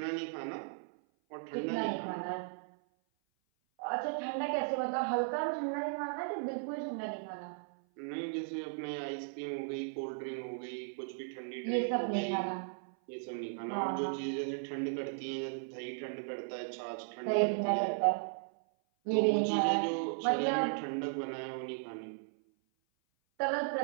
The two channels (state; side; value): silent; left; 54 dB below the other